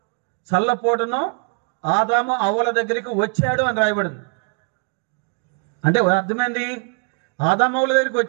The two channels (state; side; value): quieter; left; 39.5 dB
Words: చల్లపోటును ఆదాము అవ్వల దగ్గరికి వచ్చాడు అని రాయబడింది. అంటే అర్థమైంది, ఆదాము అవ్వల దగ్గరికి